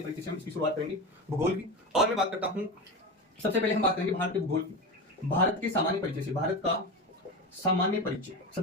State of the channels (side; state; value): both; normal; correlation 0.22